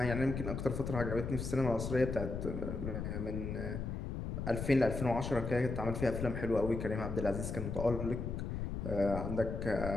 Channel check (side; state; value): left; noise; rumble, 4 dB below the sound